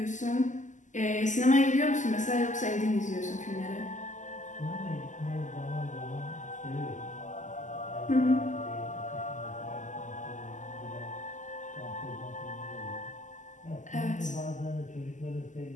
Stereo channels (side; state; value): right; late; 0.36 ms